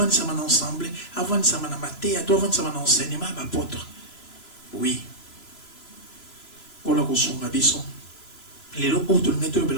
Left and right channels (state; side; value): late; right; 3.0 ms